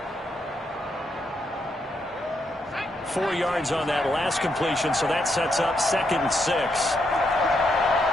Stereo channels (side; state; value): both; normal; correlation 0.79